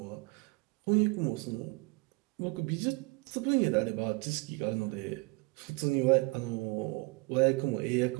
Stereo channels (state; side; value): quieter; left; 26.0 dB